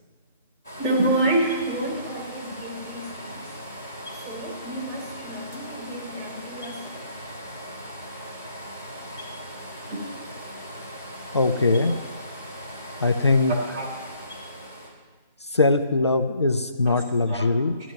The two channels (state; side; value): inverted; both; correlation -0.63